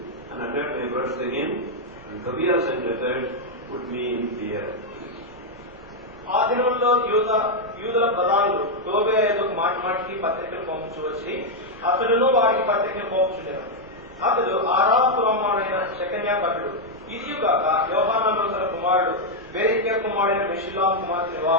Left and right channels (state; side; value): normal; both; correlation -0.01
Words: and uttered my words to him. And Tobiah sent letters, put me in fear. ఆ దినంలో యూదుల ప్రధానులు టోబియా యొద్దకు మాటి మాటికి పత్రికలు పంపించవచ్చి అతడును వారికి పత్రికలు పంపుచుండెను. అతడు ఆరాము కుమారుడైన షెకన్యా భటుడు. ఇదియుగాక యోహానాను తన కుమారుడు బెరెక్యా కుమారుడైన మెషుల్లాము కుమార్తెను